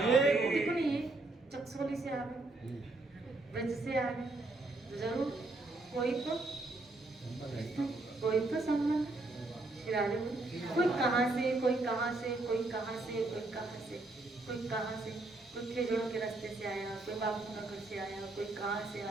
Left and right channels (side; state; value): left; quieter; 3.0 dB